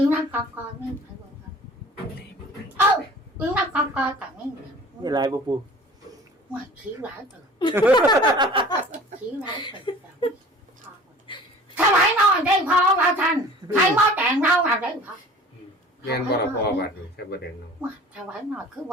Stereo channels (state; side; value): normal; both; correlation 0.44